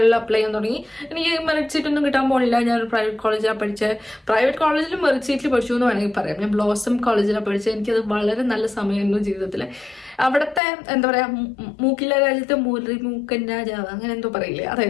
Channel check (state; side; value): drops out; right; at 10.6 s